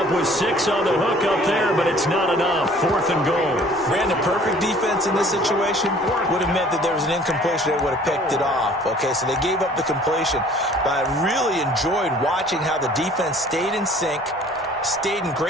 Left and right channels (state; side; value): normal; both; correlation 0.53